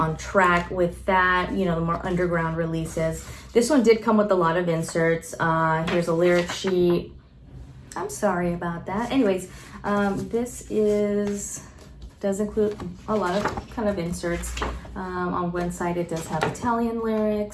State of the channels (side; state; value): both; identical; correlation 1.00